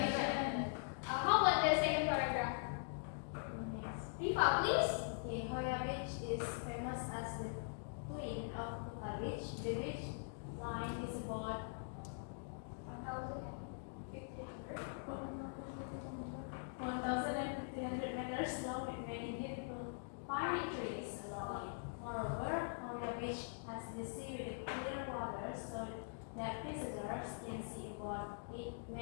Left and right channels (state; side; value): silent; right; digital silence